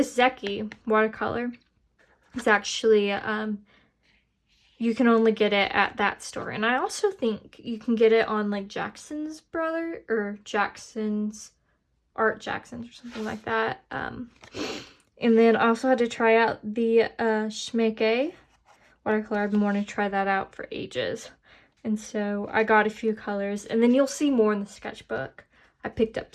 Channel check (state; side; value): identical; both; correlation 1.00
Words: Zecchi watercolor is actually, you can only get it at that store. And I also think you can get it on like Jackson's or Jackson's or something like that. And then I also had to try out the Schmecke watercolor. I've been wanting to try that out for ages. And so I got a few colors. And then you'll see more in the sketchbook. I picked up